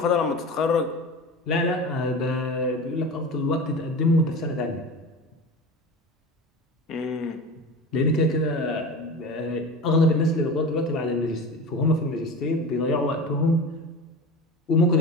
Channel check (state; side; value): normal; both; correlation 0.30